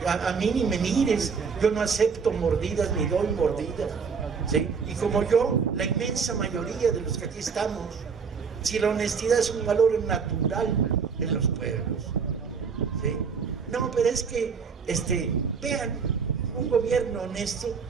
a mí ni me mires, yo no acepto mordidas ni doy mordidas, ¿sí? Y como yo, la inmensa mayoría de los que aquí estamos, si la honestidad es un valor natural en los pueblos, ¿sí? No, pero es que, vean, un gobierno honesto.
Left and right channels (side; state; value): left; quieter; 5.7 dB